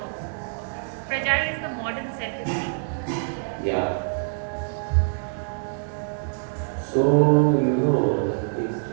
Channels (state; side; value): silent; left; digital silence